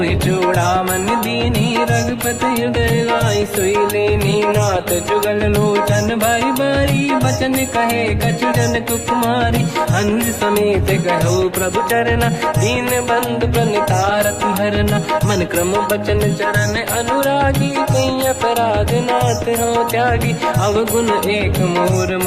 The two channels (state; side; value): identical; both; correlation 1.00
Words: चूड़ामन दीनी रघुपति हृदय लाई सोई लेनी नाथ जुगल लोचन भाई बारी बचन कहे कछु जन कुमारी हंस समेत कहो प्रभु चरना दीन बंधु प्रणितारत हरना मन क्रम बचन चरण अनुरागी कहीं अपराध नाथ हो त्यागी अवगुण एक मोर